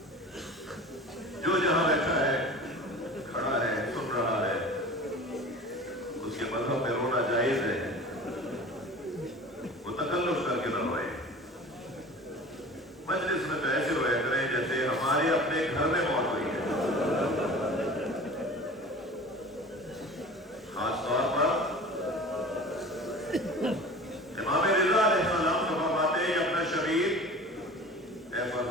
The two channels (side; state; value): both; normal; correlation 0.39